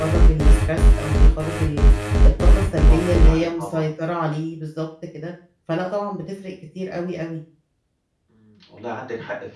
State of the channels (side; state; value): both; identical; correlation 1.00